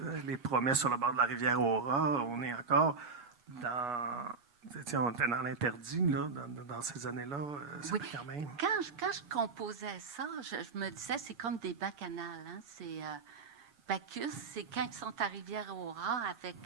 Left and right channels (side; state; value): left; quieter; 4.7 dB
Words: les promesses sur le bord de la rivière Aura. On est encore dans... on était dans l'interdit, là, dans ces années-là. oui. Quand même... Quand je composais ça, je me disais, c'est comme des bacchanales. Hein? C'est Bacchus, c'est quand ils sont à Rivière-Aura avec...